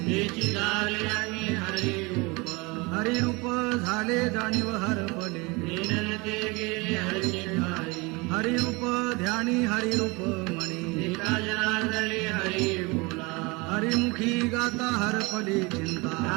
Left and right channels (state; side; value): quieter; left; 26.1 dB